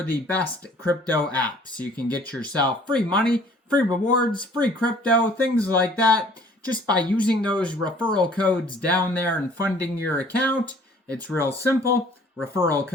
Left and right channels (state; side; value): normal; both; correlation 0.55